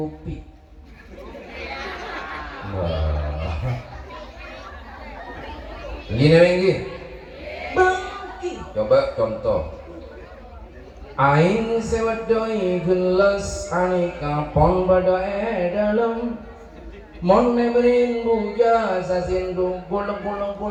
Gini lagi, bangki. Coba contoh. Aing sewadoi gelas aneka pon pada dalam. Mon neberin buja sasindu buluk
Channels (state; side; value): identical; both; correlation 1.00